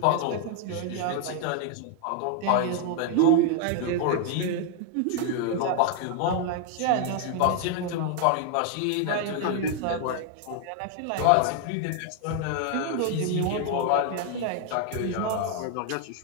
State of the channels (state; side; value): different; both; correlation 0.00